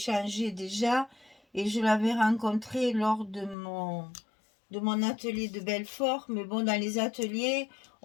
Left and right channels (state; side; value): drops out; right; at 3.6 s